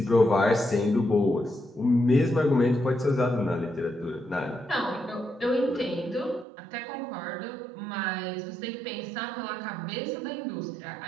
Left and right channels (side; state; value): left; drops out; at 6.5 s